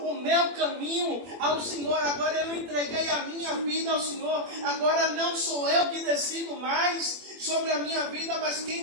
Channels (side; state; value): left; late; 21 ms